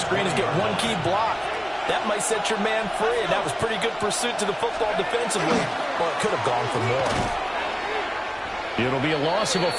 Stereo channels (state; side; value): identical; both; correlation 1.00